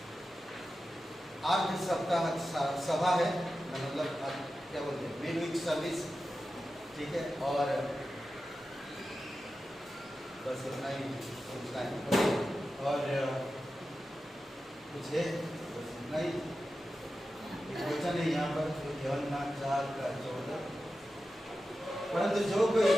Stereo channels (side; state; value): both; normal; correlation 0.92